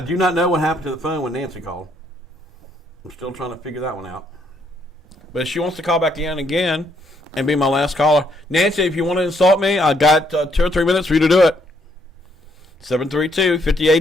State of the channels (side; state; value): both; normal; correlation 0.71